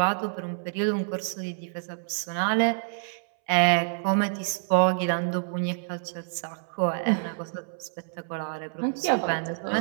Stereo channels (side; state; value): left; silent; 60 dB below the other